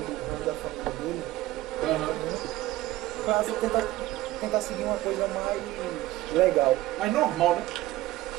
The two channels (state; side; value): quieter; left; 16.5 dB